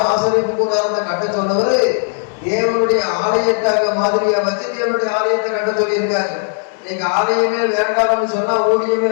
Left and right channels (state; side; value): silent; right; 68 dB below the other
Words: ஆசரிப்பு கூடாரத்தை கட்ட சொன்னவரு தேவனுடைய ஆலயத்தை அங்க மாதிரியா வச்சு தேவனுடைய ஆலயத்தை கட்ட சொல்லியிருக்காரு. நீங்க ஆலயமே வேண்டாம்னு சொன்னா, ஊழியமே